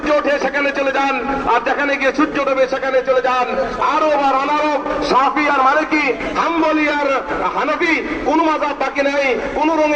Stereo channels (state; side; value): identical; both; correlation 1.00